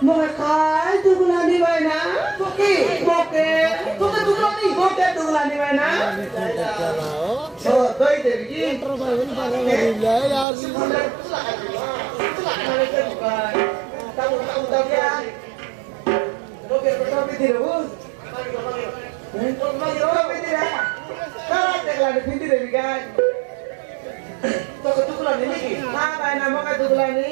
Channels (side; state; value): left; drops out; at 10.5 s